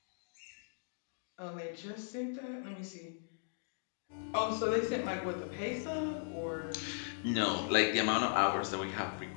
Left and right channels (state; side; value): silent; right; digital silence